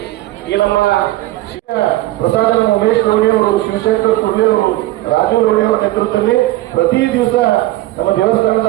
ಈ ನಮ್ಮ ಪ್ರಸಾದ ಉಮೇಶ್ ಲೋಣಿ ಅವರು, ಶಿವಶಂಕರ್ ಕುರ್ಲಿ ಅವರು, ರಾಜು ಲೋಣಿ ಅವರ ನೇತೃತ್ವದಲ್ಲಿ ಪ್ರತಿ ದಿವಸ ನಮ್ಮ ದೇವಸ್ಥಾನದ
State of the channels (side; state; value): left; quieter; 17.0 dB